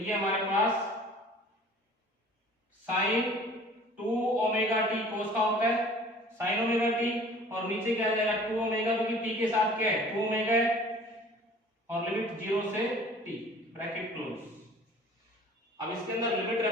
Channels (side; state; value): both; normal; correlation 0.48